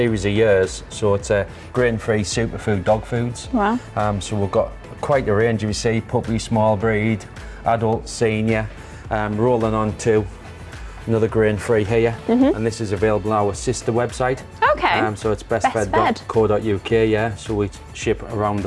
of years, so it's a grain-free superfood dog foods. Wow. So we've got quite a range, you see, puppy, small breed, adult, senior, rolling on to another grain-free here. And this is available on our sister website. Okay. So it's bestfed.co.uk, yeah. So we ship around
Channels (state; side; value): identical; both; correlation 1.00